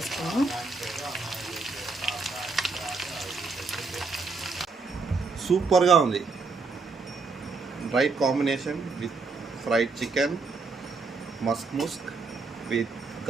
సూపర్గా ఉంది. Right combination with fried chicken, Musk with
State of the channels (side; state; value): left; quieter; 4.2 dB